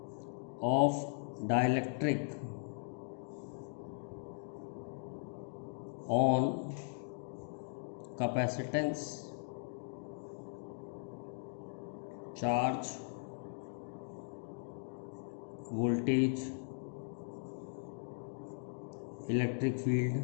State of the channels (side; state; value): right; silent; digital silence